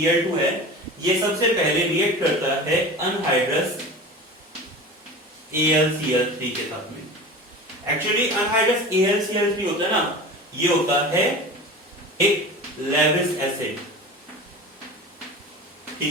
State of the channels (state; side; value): normal; both; correlation 0.34